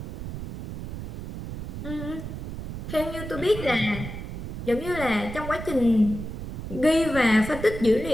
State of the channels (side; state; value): right; noise; rumble, 7 dB below the sound